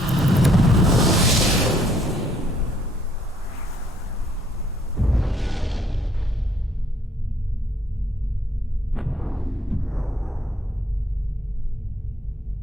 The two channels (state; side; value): normal; both; correlation 0.65